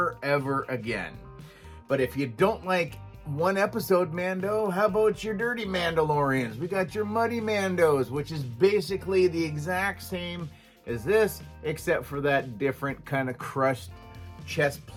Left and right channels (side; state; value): both; identical; correlation 1.00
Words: again. But if you don't like one episode Mando, how about your dirty Mandalorians? We got your muddy Mandos, which is basically the exact same as this, except for that different kind of crushed chest